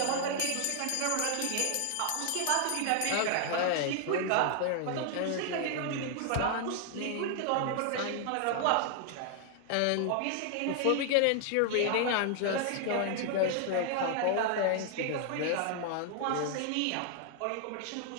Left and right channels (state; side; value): different; both; correlation 0.00